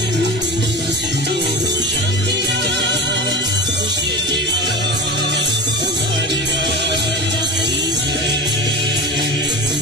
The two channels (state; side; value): normal; both; correlation 0.28